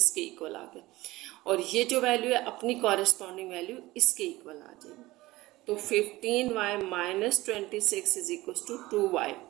इक्वल आ गए। और ये जो वैल्यू है अपनी कॉरेस्पॉन्डिंग वैल्यू इसके इक्वल आ जाएगी। तो 15y minus 26 is equals to 2y।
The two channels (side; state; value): left; quieter; 18.9 dB